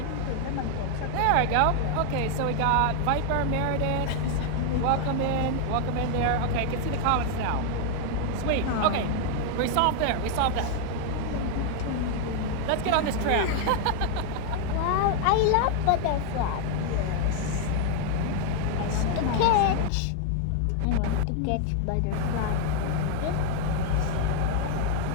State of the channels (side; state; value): both; different; correlation 0.00